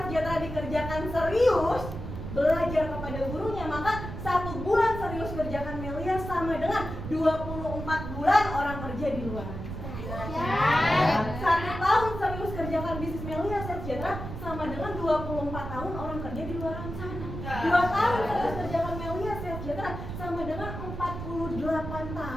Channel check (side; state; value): right; noise; rumble, 8 dB below the sound